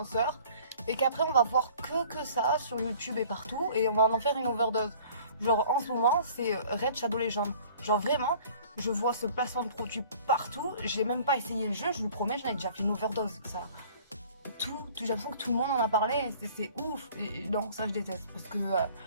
et qu'après on va voir que ça sur YouTube et partout et on va en faire une overdose. Genre en ce moment c'est Raid Shadow Legends. Genre vraiment, je vois ce placement de produit partout, j'ai même pas essayé le jeu, je vous promets, j'en ai déjà fait une overdose. Ça, j'ai l'impression que tout le monde en a parlé, c'est ouf. Et non, ça je déteste parce que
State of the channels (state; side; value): inverted; both; correlation -0.50